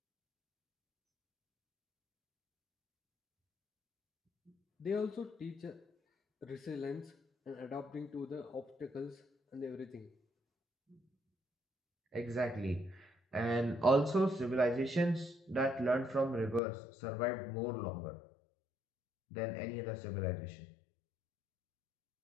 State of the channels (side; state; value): right; drops out; at 16.6 s